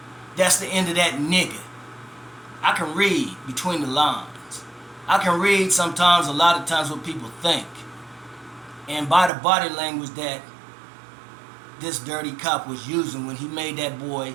that's the end of that nigga. I can read between the lines. I can read sometimes, a lot of times, what people think. And by the body language that this dirty cop was using when he made that boy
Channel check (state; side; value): drops out; left; at 9.3 s